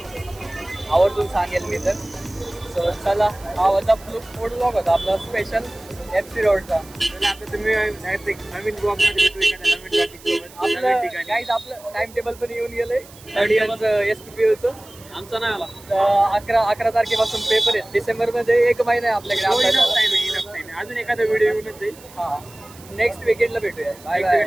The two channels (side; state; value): right; noise; hiss, 22 dB below the sound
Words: आवर्जून सांगेल मी तर. सो चला हा होता फूड ब्लॉग होता आपला स्पेशल FC रोडचा. आता तुम्ही नवीन ब्लॉग मध्ये भेटू एखाद्या नवीन टॉपिक सोबत आपलं नवीन ठिकाणी. गाईज आपलं टाइम टेबल पण येऊन गेलंय 3rd इयरचं SPPUचं. आमचा नाही आला 11 तारखेपासून पेपर आहेत. डिसेंबरमध्ये 1 महिना आहे आपल्याकडे अभ्यासाला. अजून एखादा व्हिडिओ येऊनच जाईल. हा नेक्स्ट वीकेंडला भेटूया. Bye